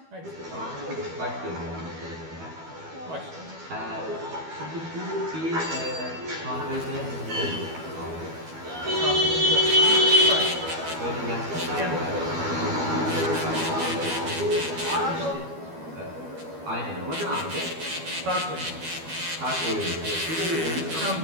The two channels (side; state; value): left; late; 12 ms